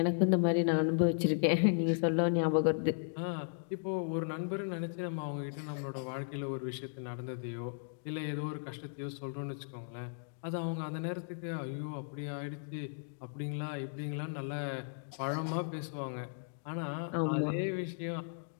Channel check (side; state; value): right; silent; digital silence